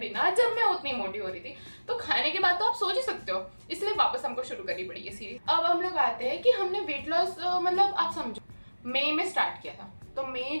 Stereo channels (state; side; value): inverted; both; correlation -1.00